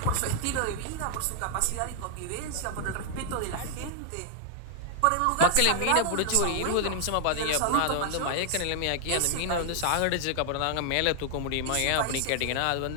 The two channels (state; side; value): different; both; correlation 0.00